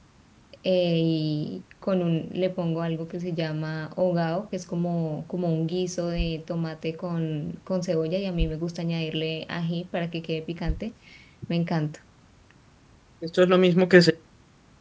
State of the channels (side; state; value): both; identical; correlation 1.00